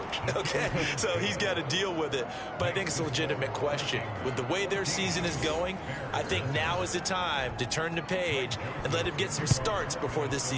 okay? So he's got to deal with it. But I think it's a legitimate question. With the way their season is going, I think now is the time to turn the page and let him get some starts before this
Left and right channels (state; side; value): identical; both; correlation 1.00